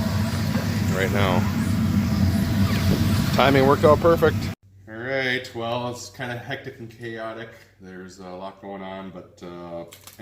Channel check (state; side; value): identical; both; correlation 1.00